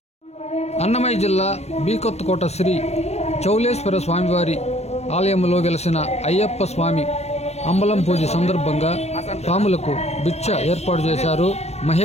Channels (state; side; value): late; right; 0.31 ms